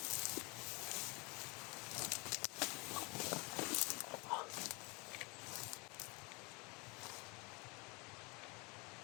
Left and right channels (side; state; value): right; quieter; 29.3 dB